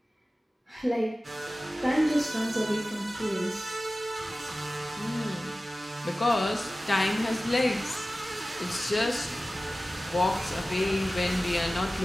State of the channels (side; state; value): both; normal; correlation 0.96